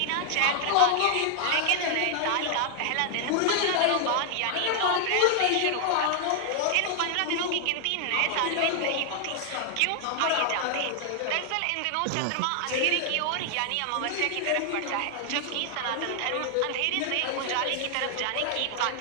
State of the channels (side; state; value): both; different; correlation 0.00